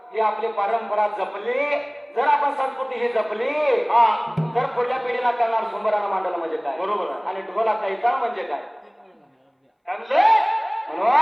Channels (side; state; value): both; identical; correlation 1.00